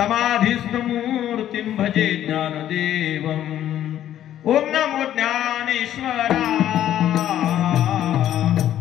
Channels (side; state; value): right; quieter; 11.6 dB